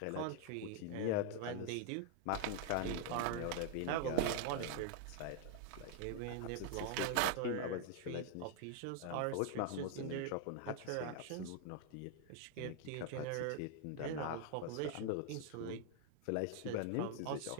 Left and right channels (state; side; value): different; both; correlation 0.00